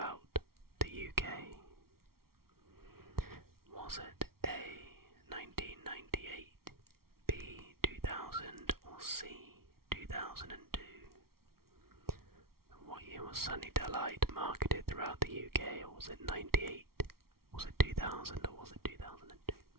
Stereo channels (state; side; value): late; left; 0.94 ms